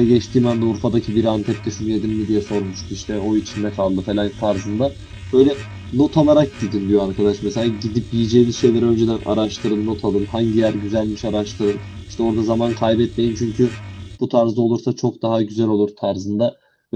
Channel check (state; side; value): identical; both; correlation 1.00